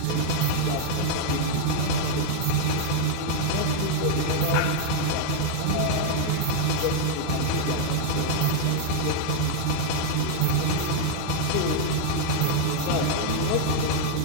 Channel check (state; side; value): different; both; correlation -0.01